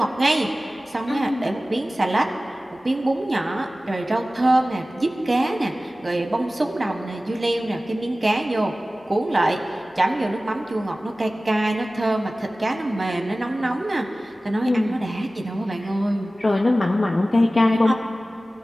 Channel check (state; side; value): normal; both; correlation 0.97